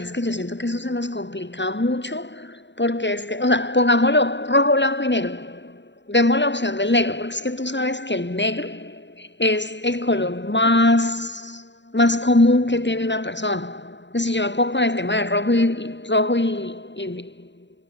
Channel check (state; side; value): late; right; 0.52 ms